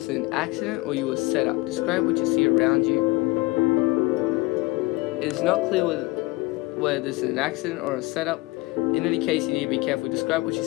is an accident or you were set up. Describe what you see around you. It's not clear whether this is an accident or a setup. In any case, you need to be careful. Describe what you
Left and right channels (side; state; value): right; quieter; 22.3 dB